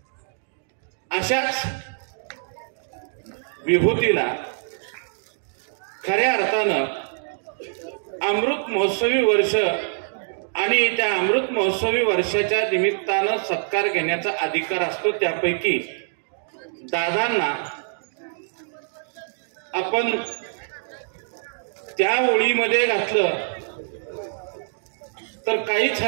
अशाच विभूतीला खऱ्या अर्थानं अमृत महोत्सवी वर्ष आणि त्या अमृत महोत्सवी वर्षाच्या निमित्तानं सत्कार घेण्याचा अधिकार असतो. त्यापैकी दादांना आपण त्या ओळीमध्ये घातलं तर काहीच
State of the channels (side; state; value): left; silent; digital silence